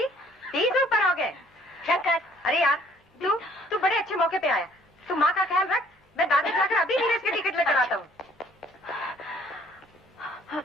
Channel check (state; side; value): normal; both; correlation 0.59